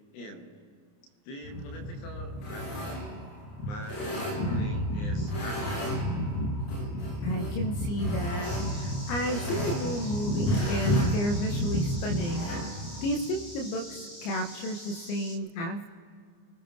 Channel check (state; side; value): late; right; 29 ms